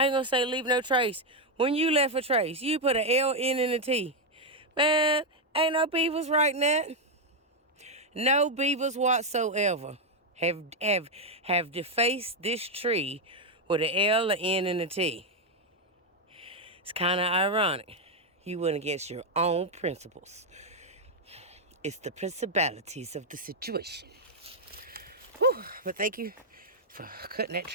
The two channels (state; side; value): normal; both; correlation 0.02